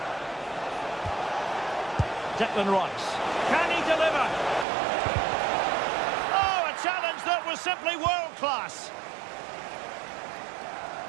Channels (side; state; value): left; drops out; at 4.7 s